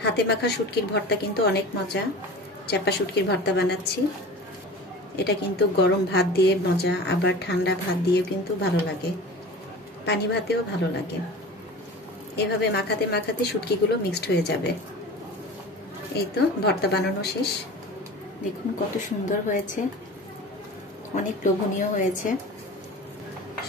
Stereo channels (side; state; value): both; normal; correlation 0.36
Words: হাতে মাখা শুটকির ভর্তা কিন্তু অনেক মজা। চাপা শুটকির ভর্তা বানাচ্ছি, এটা কিন্তু গরম ভাত দিয়ে মজা, আবার ঠান্ডা ভাত দিয়েও কিন্তু ভালো লাগে, পানি ভাতেও ভালো লাগে। এভাবে মাখাতে মাখাতে শুটকিগুলো মিক্সড হয়ে যাবে। এই তো ভর্তা বানানো শেষ। দেখুন কত সুন্দর হয়েছে, অনেক লোভনীয় হয়েছে।